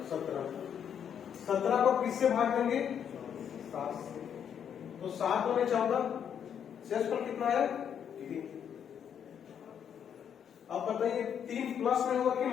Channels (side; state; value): right; quieter; 8.4 dB